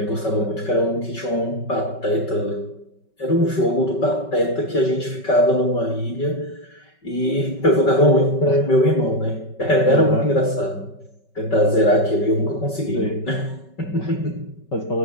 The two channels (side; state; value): right; late; 5.3 ms